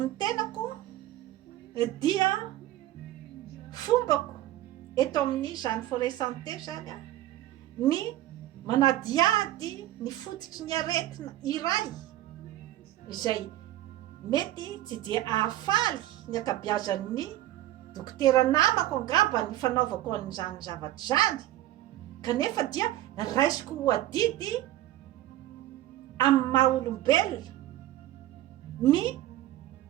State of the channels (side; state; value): left; quieter; 14.5 dB